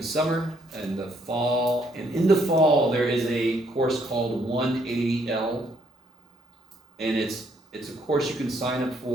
summer and the fall, and in the fall, there is a course called 180L, and it's a course you can sign up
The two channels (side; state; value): both; normal; correlation 0.69